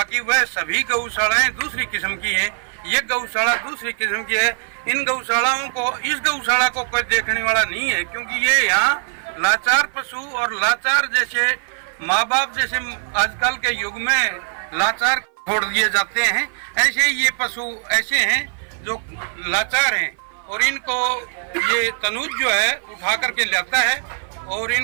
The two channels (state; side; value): silent; left; 56 dB below the other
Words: वह सभी गौशालाएं दूसरी किस्म की हैं। ये गौशाला दूसरी किस्म की है। इन गौशालाओं को, इस गौशाला को कोई देखने वाला नहीं है, क्योंकि ये यहाँ लाचार पशु और लाचार जैसे माँ बाप जैसे आजकल के युग में लाचार छोड़ दिए जाते हैं, ऐसे ही ये पशु ऐसे हैं जो लाचार हैं। और इनको ये तनुज जो है उठा करके लाता है और